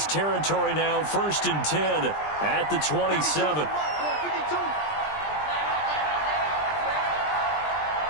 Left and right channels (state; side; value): late; right; 20 ms